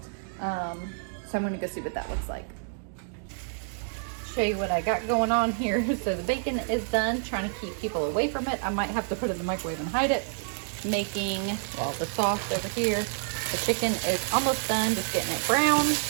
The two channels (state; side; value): silent; left; digital silence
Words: So I'm gonna go see what that looks like. Show you what I got going on here. So the bacon is done, trying to keep people away from it. I might have to put it in the microwave and hide it. Making, well, the sauce over here. The chicken is almost done, just getting it brown.